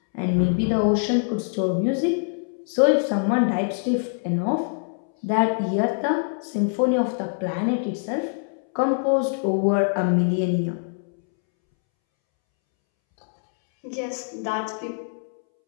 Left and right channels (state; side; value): silent; right; 63 dB below the other